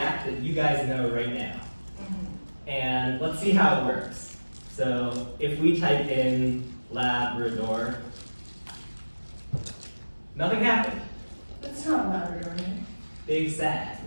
that you guys know right now. And let's see how it works. So if we type in Labrador, nothing happened. That's not Labrador, right? Big sad.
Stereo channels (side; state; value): both; inverted; correlation -1.00